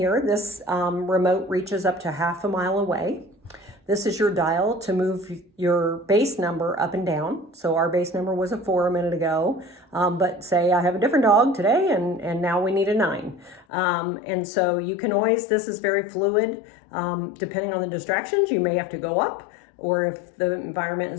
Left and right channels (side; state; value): right; drops out; at 13.7 s